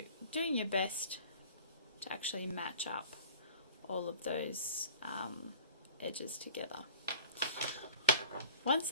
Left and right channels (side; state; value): both; inverted; correlation -0.44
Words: doing your best to actually match up all of those edges together. Once